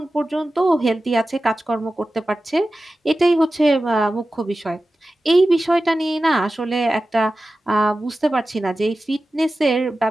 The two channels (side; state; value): both; normal; correlation 0.95